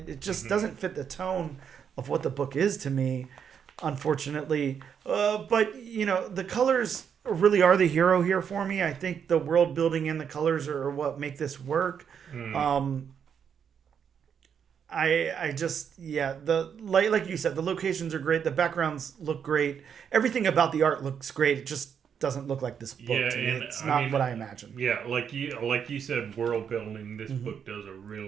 just doesn't fit the tone of what the book is to me, unfortunately. But the colors really are the hero here for me. I think the world building and the colors are what make this work. I just, like you said, the locations are great. The backgrounds look great. Everything about the art looks great. It just doesn't look like this book to me. It's not what I imagined. Yeah, like you said, world building. This book does a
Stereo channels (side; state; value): left; quieter; 7.6 dB